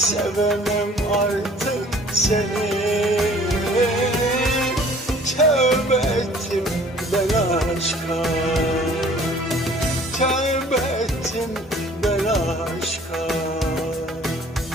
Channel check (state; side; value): normal; both; correlation 0.52